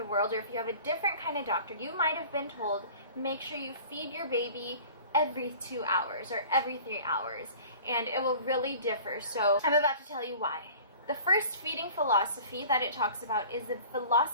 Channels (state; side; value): inverted; both; correlation -0.44